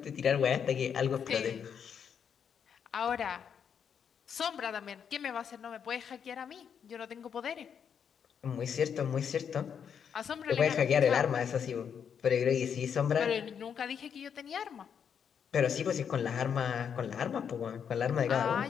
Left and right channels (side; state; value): right; quieter; 7.6 dB